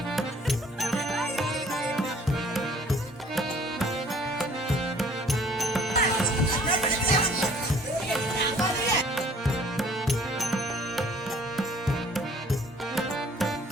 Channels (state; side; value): normal; both; correlation 0.55